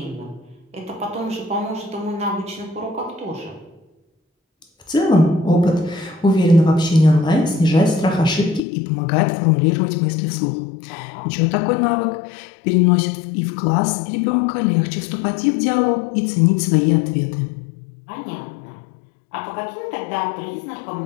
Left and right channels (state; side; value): drops out; right; at 8.6 s